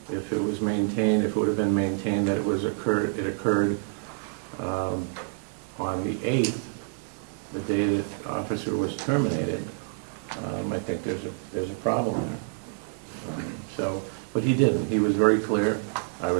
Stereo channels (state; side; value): silent; left; digital silence